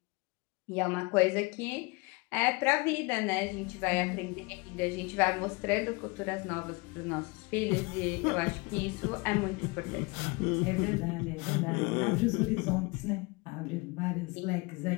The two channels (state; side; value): quieter; right; 26.7 dB